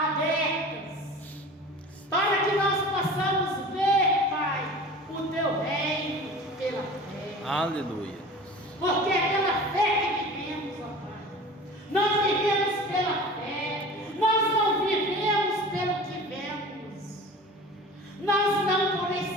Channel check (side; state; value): both; normal; correlation 0.38